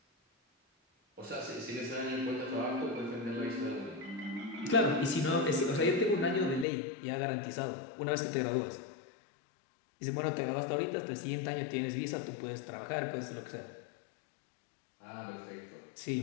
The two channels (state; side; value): drops out; right; at 6.7 s